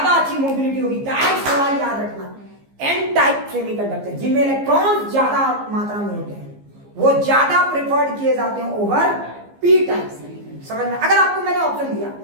अच्छी मोबिलिटी होगी। डायरेक्ट सवाल याद रखना, एन टाइप सेमीकंडक्टर जिनमें इलेक्ट्रॉन ज्यादा मात्रा में होते हैं, वो ज्यादा प्रेफर्ड किए जाते हैं ओवर पी टाइप। समझ में? अगर आपको मैंने ऑप्शन दिया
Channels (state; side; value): late; left; 15 ms